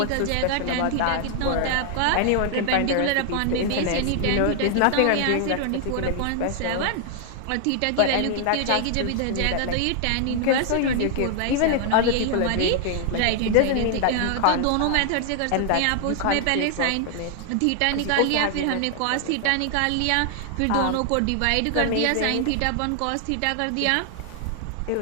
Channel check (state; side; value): different; both; correlation 0.00